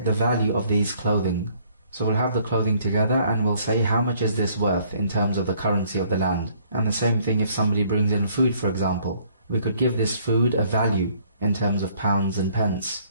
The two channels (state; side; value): inverted; both; correlation -0.62